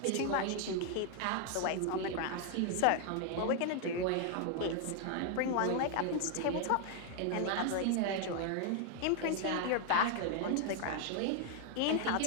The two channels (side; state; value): both; different; correlation 0.00